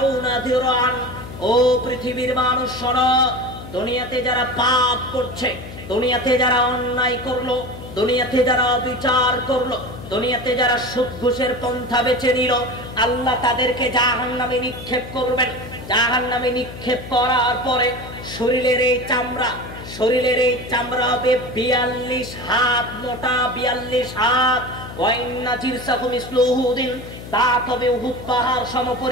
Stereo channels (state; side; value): noise; left; hum, 13 dB below the sound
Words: দিরআন, ও পৃথিবীর মানুষ শোনো, দুনিয়াতে যারা পাপ করছে, দুনিয়াতে যারা অন্যায় করলো, দুনিয়াতে যারা অবিচার করলো, দুনিয়াতে যারা সুদ ঘুষের পন্থা বেছে নিল, আল্লাহ তাদেরকে জাহান্নামে নিক্ষেপ করবেন। জাহান্নামে নিক্ষেপ করার পরে শরীরের এই চামড়া, শরীরের এই চামড়া হবে ৪২ হাত মোটা, ৪২ হাত। ওয়াইন্না জিরসাহু মিসলু উহুদিন, দাঁত হবে উহুদ পাহাড়